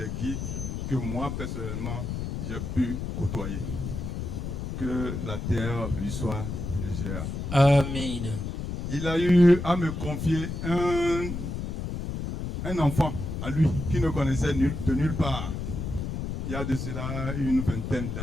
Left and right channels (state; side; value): noise; left; rumble, 4 dB below the sound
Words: guides que moi personnellement j'ai pu côtoyer. que la terre lui soit légère. Amen. Il a eu à me confier un enfant à lui qui ne connaissait de nulle part. Il y a de cela une vingtaine